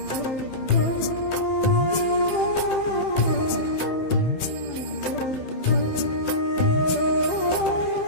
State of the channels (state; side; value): late; right; 15 ms